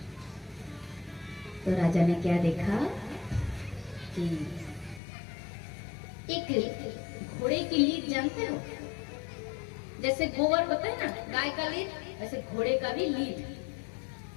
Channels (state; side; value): drops out; right; at 5.0 s